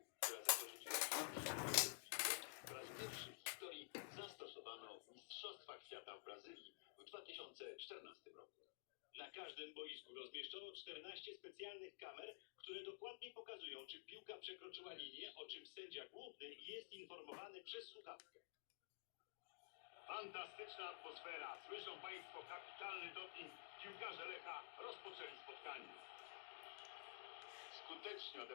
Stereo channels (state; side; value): silent; right; digital silence